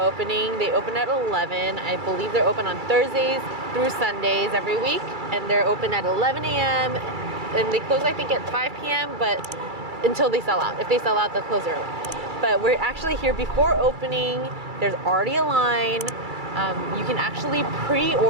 They open at 11. I believe they're open on Thursdays through Sundays every week. And they're open at 11 a.m. And they close, I think, at 5 p.m. but until they sell out. If they sell out, they'll close early. But we're actually here before opening. There's already a line. You can actually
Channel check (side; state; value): left; late; 2.3 ms